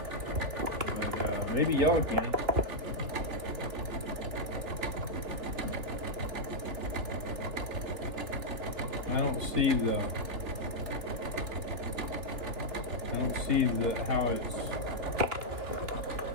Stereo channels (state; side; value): late; left; 2.9 ms